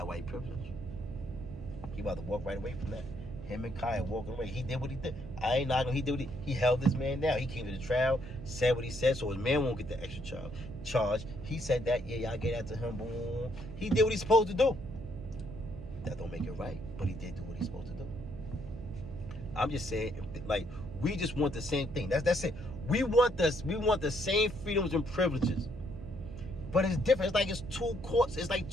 why he privileged. He about to walk right away from that. Him and Kyle walking away. He did what he did. I ain't knocking. He did what he held this man down. He came to the trial, said what he said, so his man won't get the extra charge. He said that, yeah, y'all get that to him. Boom. He did what he's supposed to do. That don't make it right, but he did do what he's supposed to do. I'm just saying, like, we just want the same thing. That's it. We want the same freedoms and privileges. But it's different. It's like it's 2 courts. It's like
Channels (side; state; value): right; noise; hum, 14 dB below the sound